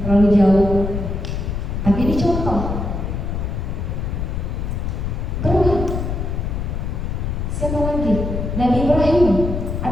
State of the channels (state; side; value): noise; left; rumble, 2 dB below the sound